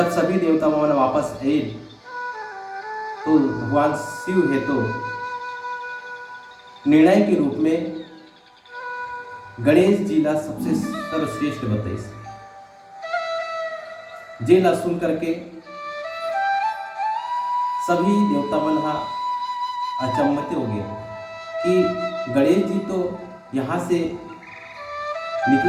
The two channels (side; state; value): both; identical; correlation 1.00